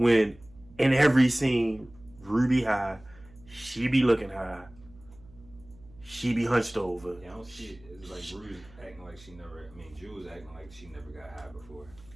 in every scene Ruby high, she be looking high. She be hunched over. Yeah, I don't see it. It's like Rue's acting like she never. I mean, Jules acting like she never got high before.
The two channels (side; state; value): right; noise; hum, 24 dB below the sound